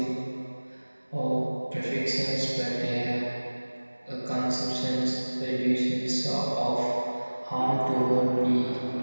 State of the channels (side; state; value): both; inverted; correlation -1.00